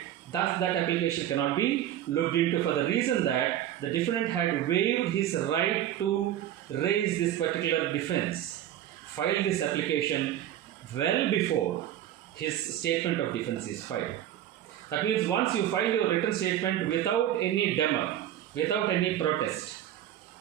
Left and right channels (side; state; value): left; quieter; 11.9 dB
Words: that application cannot be looked into for the reason that the defendant had waived his right to raise this particular defense, filed this application well before his statement of defense is filed. That means once you file your written statement without any demur, without any protest,